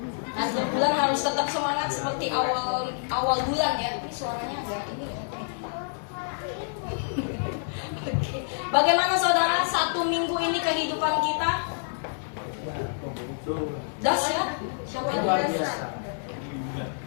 Akhir bulan harus tetap semangat seperti awal bulan ya. Ini suaranya agak ini ya. Oke. Bagaimana saudara satu minggu ini kehidupan kita? Dahsyat. Siapa yang dahsyat?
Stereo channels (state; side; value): silent; right; digital silence